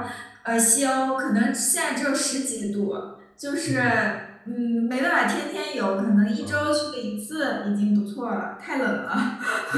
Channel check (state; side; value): identical; both; correlation 1.00